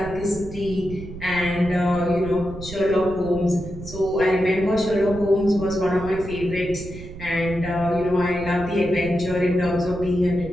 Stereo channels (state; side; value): noise; right; rumble, 12 dB below the sound